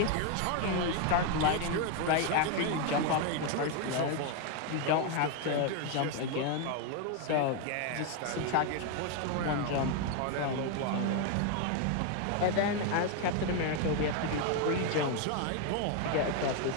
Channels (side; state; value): both; different; correlation 0.01